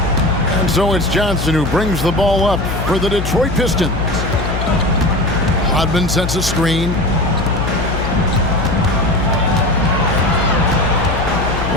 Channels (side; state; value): left; noise; hum, 4 dB below the sound